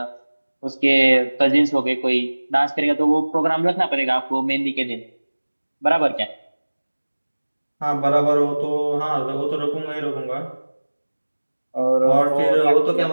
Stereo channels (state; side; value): inverted; both; correlation -1.00